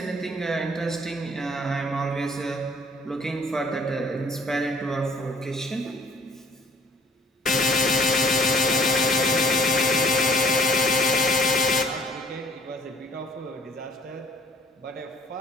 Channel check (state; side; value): normal; both; correlation 0.56